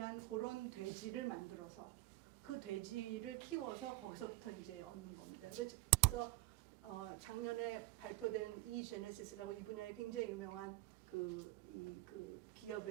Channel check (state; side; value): quieter; left; 18.1 dB